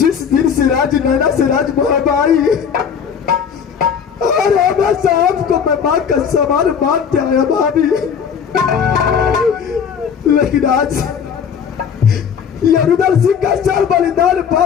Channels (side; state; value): right; quieter; 7.2 dB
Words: दिन से राज नैना से राज मोहबाई और हमेशा आपको मैं माँ का समान मानते आया भाभी, लेकिन आज ये रुदल सिंह का चाल बलिदान